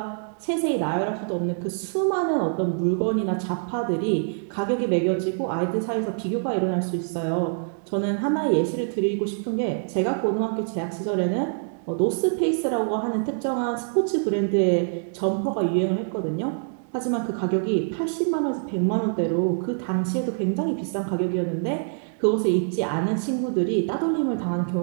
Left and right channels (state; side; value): silent; left; 62 dB below the other